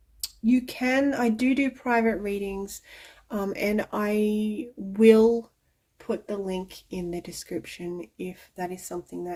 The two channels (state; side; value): identical; both; correlation 1.00